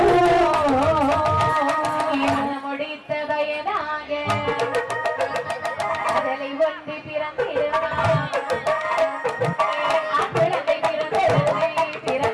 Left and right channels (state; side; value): identical; both; correlation 1.00